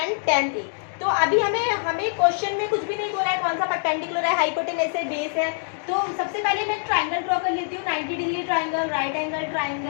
tan A। तो अभी हमें क्वेश्चन में कुछ भी नहीं बोला है कौन सा परपेंडिकुलर है, हाइपोटेनस है, बेस है। तो सबसे पहले मैं ट्राइंगल ड्रॉ कर लेती हूँ, 90 degree triangle, right angle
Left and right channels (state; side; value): silent; right; digital silence